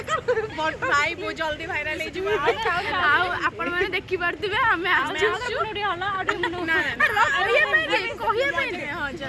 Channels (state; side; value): identical; both; correlation 1.00